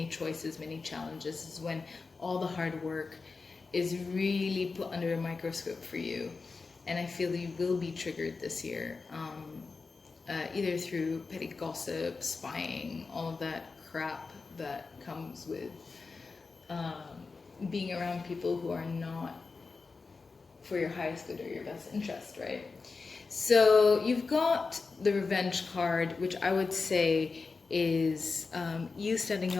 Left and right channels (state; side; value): quieter; right; 4.3 dB